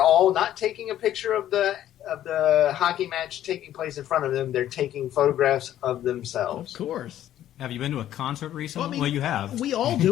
all not taking a picture of the hockey match taking place in front of them. They're taking photographs of themselves. Of course. Have you been to a concert recently? Well, you have. We all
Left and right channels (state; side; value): quieter; right; 12.0 dB